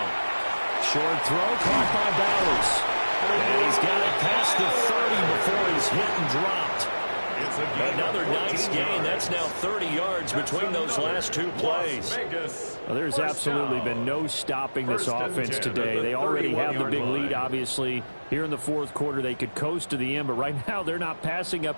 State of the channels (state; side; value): inverted; both; correlation -1.00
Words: Short throw caught by Bowers. And he's got it past the 30 before he's hit and dropped. Another nice gain. That's now 30 yards between those last 2 plays. Well, there's absolutely been no stopping this offense today. They already have the big lead, obviously. Here in the 4th quarter, they could coast to the end, but right now they're not passing